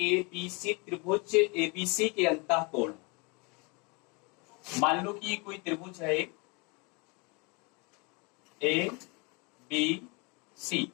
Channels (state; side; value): quieter; right; 29.9 dB